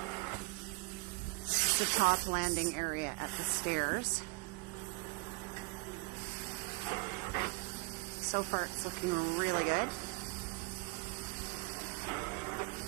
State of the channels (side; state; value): left; quieter; 24.8 dB